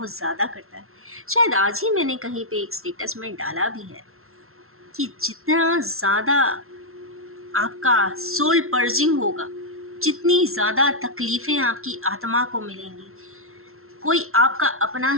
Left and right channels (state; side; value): late; left; 0.62 ms